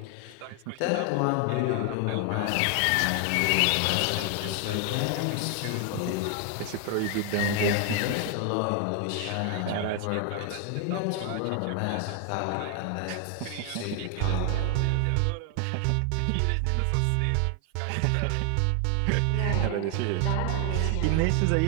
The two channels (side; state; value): both; different; correlation 0.00